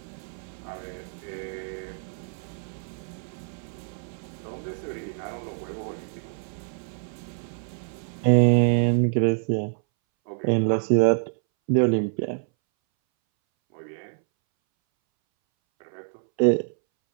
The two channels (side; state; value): left; silent; 60 dB below the other